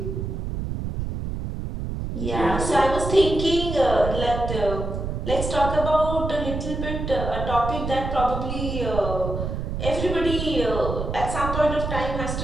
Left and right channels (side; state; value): right; noise; rumble, 4 dB below the sound